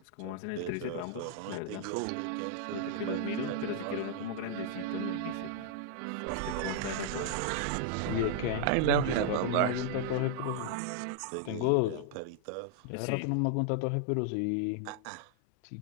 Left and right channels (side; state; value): both; different; correlation -0.01